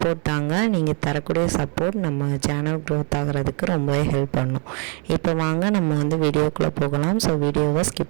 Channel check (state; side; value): quieter; left; 38.7 dB